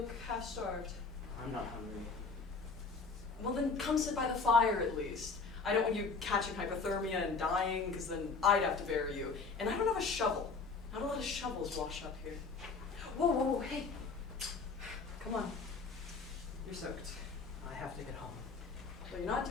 half-starved. I'm not hungry. Well, then come sit by the fire at least. I don't want you catching hypothermia and dying, because then I'd have to bury you. And I don't have a shovel. Not a lot of shovels wash up here. Whoa, hey. Come on. You're soaked. I have to get home. But you're not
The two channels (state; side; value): quieter; right; 4.5 dB